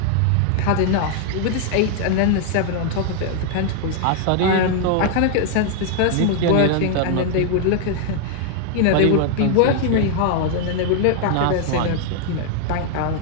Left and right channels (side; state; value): both; different; correlation 0.00